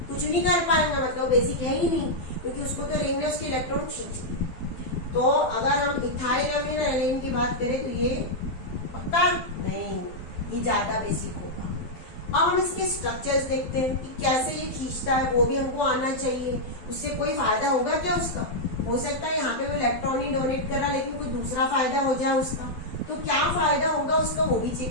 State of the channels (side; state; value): right; late; 12 ms